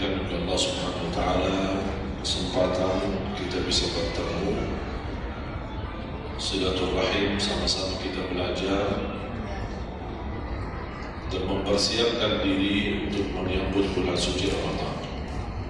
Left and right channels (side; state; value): both; identical; correlation 1.00